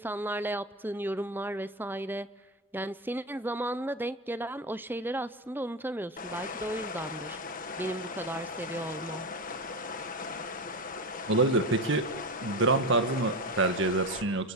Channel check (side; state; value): both; normal; correlation 0.19